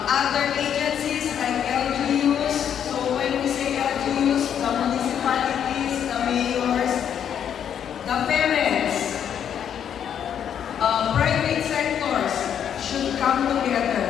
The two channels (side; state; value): right; quieter; 8.9 dB